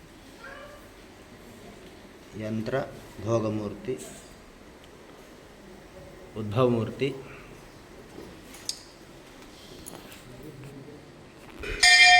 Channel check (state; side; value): identical; both; correlation 1.00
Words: యంత్ర భోగమూర్తి ఉద్భవమూర్తి